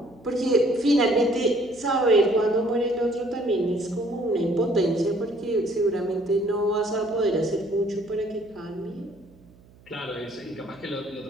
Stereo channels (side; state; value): right; noise; hum, 26 dB below the sound